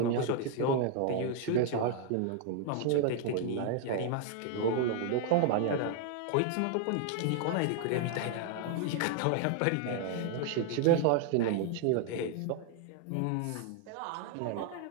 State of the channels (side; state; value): both; different; correlation 0.00